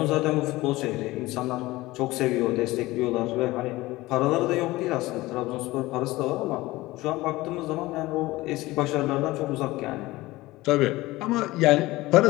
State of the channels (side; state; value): right; quieter; 19.1 dB